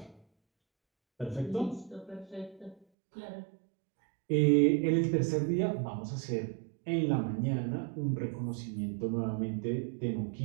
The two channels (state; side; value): drops out; left; at 2.9 s